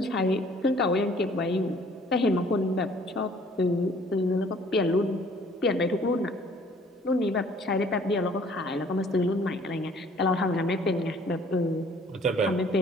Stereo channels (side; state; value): both; normal; correlation 0.57